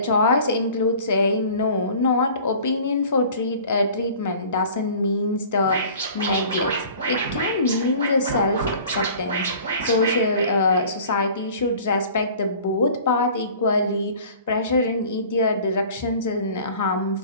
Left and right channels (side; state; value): both; inverted; correlation -0.46